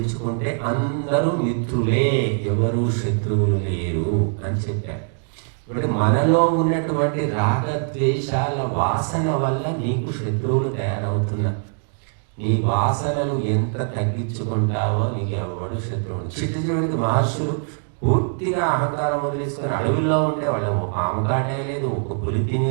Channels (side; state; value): left; silent; 64 dB below the other